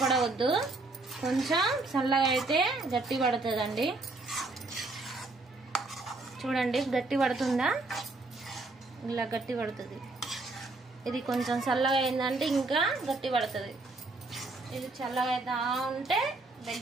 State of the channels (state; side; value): quieter; left; 3.3 dB